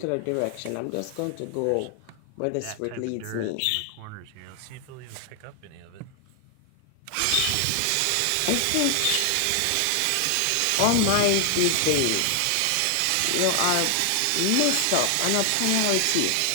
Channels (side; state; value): both; different; correlation 0.00